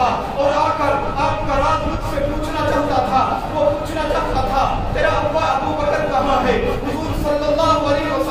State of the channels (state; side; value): identical; both; correlation 1.00